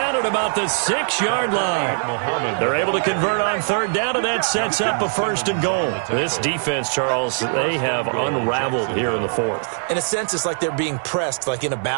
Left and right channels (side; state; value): left; silent; digital silence